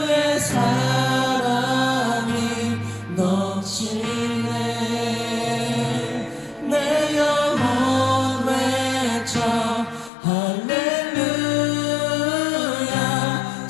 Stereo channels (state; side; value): drops out; right; at 10.1 s